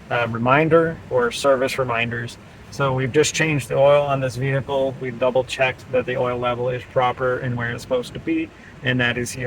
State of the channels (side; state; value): both; identical; correlation 1.00